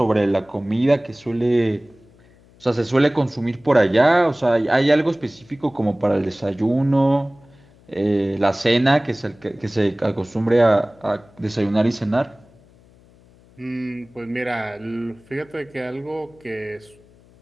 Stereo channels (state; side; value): noise; left; hum, 28 dB below the sound